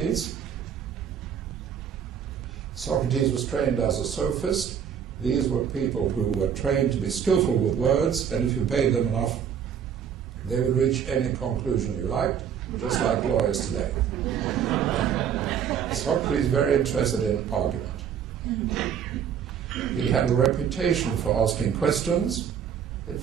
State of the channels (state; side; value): quieter; left; 8.2 dB